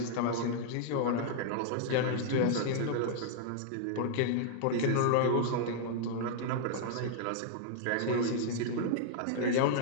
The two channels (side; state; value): both; different; correlation -0.01